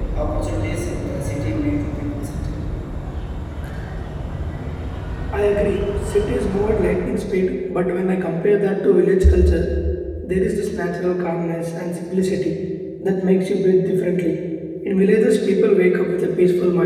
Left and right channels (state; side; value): identical; both; correlation 1.00